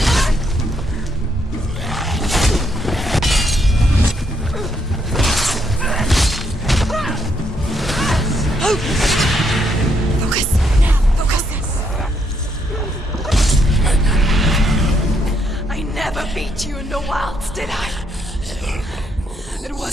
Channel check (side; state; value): both; normal; correlation 0.74